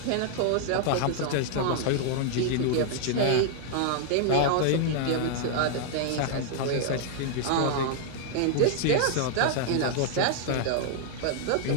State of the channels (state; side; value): different; both; correlation 0.00